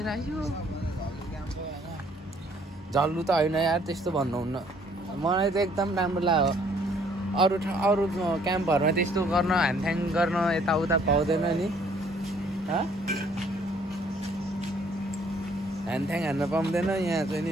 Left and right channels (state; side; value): normal; both; correlation 0.62